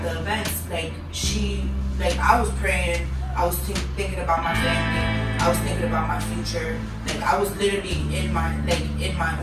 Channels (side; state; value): both; identical; correlation 1.00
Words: the events, like I was praying, I was thinking about my family, I was thinking about my future, like I was literally in my